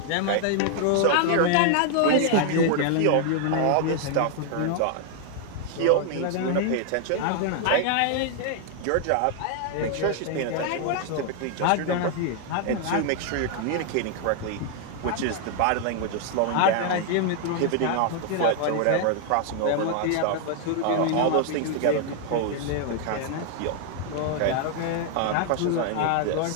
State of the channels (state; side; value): different; both; correlation 0.00